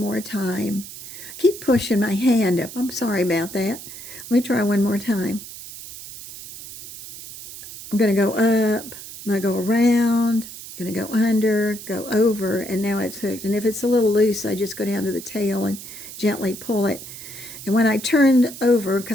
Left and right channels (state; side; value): noise; right; hiss, 13 dB below the sound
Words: time. Keep pushing my hand up. I'm sorry about that. Let me try one more time. I'm going to go up. I'm going to go around. I'm going to go under, go over, and now it's hooked. And if it's a little loose, I just go down to the tail and gently pull it. And when I turn over,